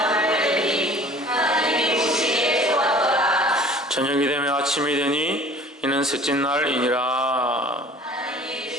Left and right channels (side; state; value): both; normal; correlation 0.47